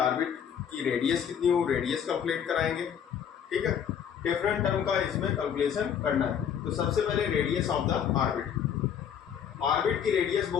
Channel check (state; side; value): quieter; right; 8.4 dB